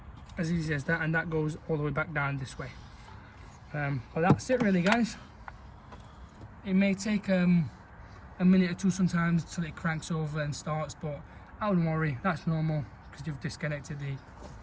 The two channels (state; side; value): identical; both; correlation 1.00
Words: as easy as that, and that goes all the way back down this way. But that's it really, guys. It may take a minute or two sometimes till it cranks over and starts, but I wouldn't worry, that's normal, because you've disconnected the